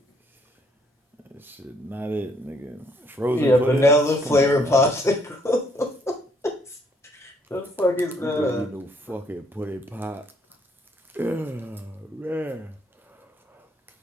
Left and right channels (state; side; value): normal; both; correlation 0.67